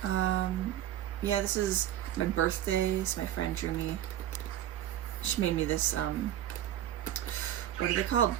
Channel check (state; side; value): quieter; left; 12.0 dB